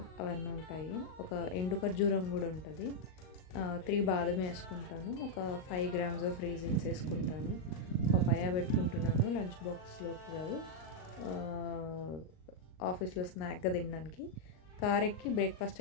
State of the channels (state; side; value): late; right; 38 ms